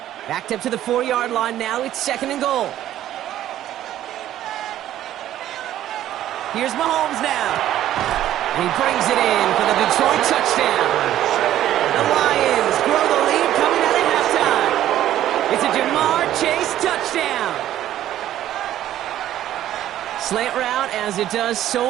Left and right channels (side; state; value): left; quieter; 12.5 dB